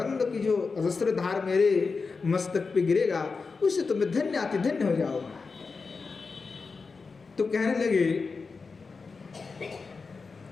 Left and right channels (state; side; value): quieter; right; 4.6 dB